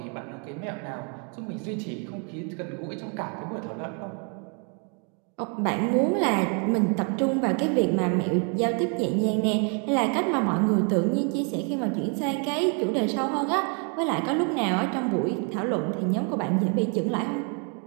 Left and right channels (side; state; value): left; quieter; 38.3 dB